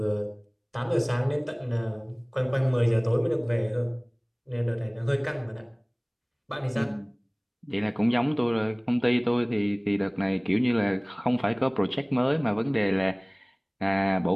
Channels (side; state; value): both; identical; correlation 1.00